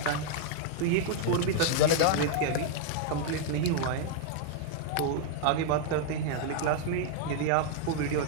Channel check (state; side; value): different; both; correlation 0.00